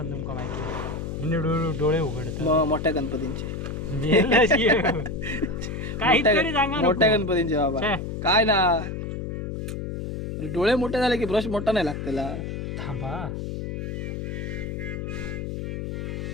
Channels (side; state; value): left; noise; hum, 5 dB below the sound